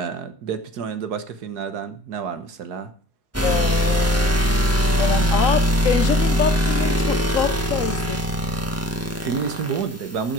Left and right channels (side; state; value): both; normal; correlation 0.48